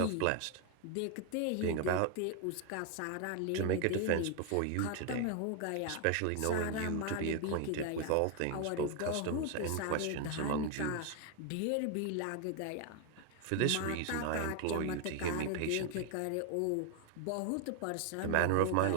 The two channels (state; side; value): different; both; correlation 0.01